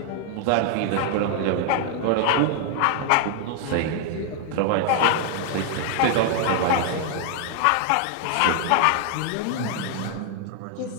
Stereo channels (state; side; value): different; both; correlation 0.00